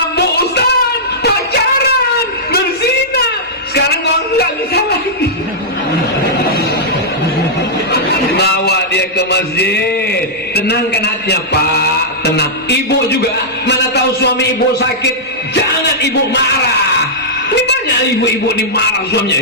Ustaz, pacaran, berzina, sekarang nggak bisa lagi. boleh ke masjid. Tenangkan hatinya, Pak, tenang. Ibu juga, mana tahu suami ibu sakit, jangan ibu marah. Ini banyak ibu-ibu ini marah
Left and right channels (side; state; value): both; normal; correlation -0.11